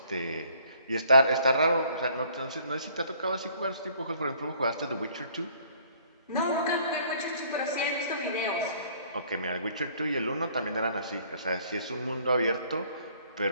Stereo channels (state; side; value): inverted; both; correlation -0.59